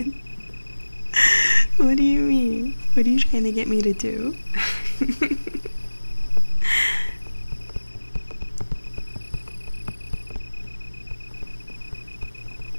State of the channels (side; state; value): both; inverted; correlation -1.00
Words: What do you mean? What are you trying to get me to do?